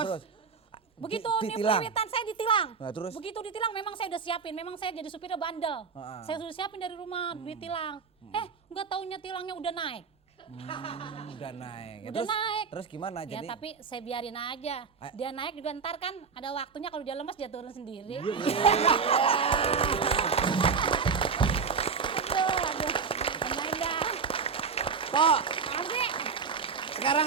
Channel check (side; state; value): left; quieter; 5.7 dB